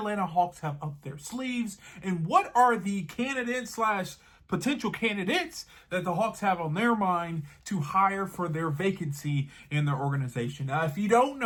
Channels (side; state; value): both; identical; correlation 1.00